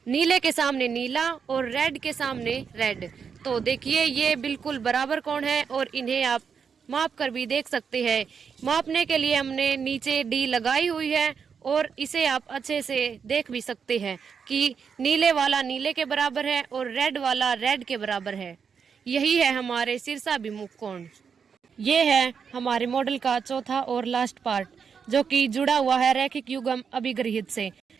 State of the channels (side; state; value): left; quieter; 6.5 dB